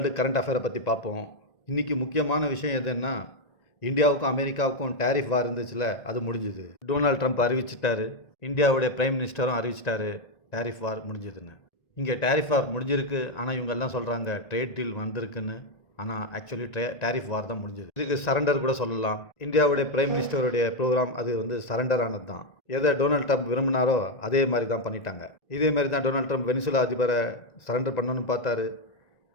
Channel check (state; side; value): late; right; 1.9 ms